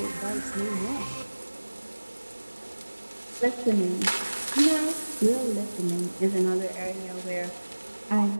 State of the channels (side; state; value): both; inverted; correlation -1.00